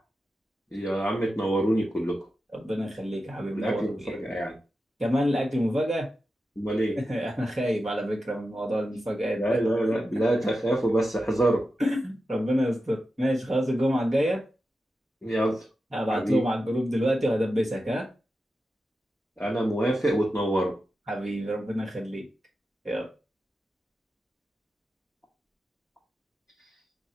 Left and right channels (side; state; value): both; normal; correlation 0.91